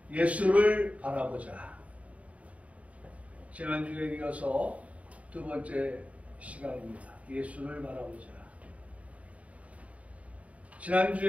예수를 바라보자. 지난주에 이어서 두 번째 시간입니다. 예수를 바라보자.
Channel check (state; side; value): late; left; 0.067 ms